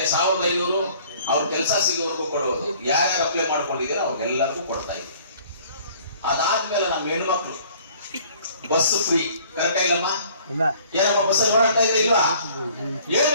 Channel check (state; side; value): inverted; both; correlation -0.54